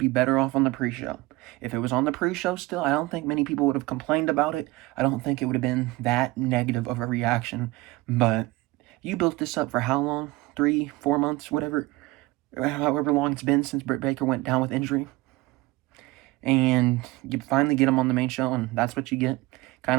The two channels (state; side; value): quieter; left; 20.2 dB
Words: better off on the pre-show. If it was on the pre-show still, I don't think many people would have complained about it. I don't think it would have been that negative of a reaction. But you built this up for how long? 3, 4 months, however long it's been since Britt Baker went down with injury. And you finally get him on the main show, and that's what you get.